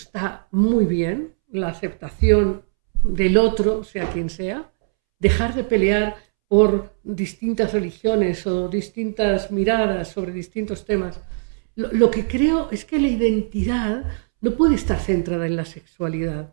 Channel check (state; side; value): silent; left; 65 dB below the other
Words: muy bien, la aceptación del otro, sea quien sea, dejar de pelear por distintas religiones o distintas miradas sobre distintos temas. Lo que creo es que la identidad no puede estar centrada en la sexualidad.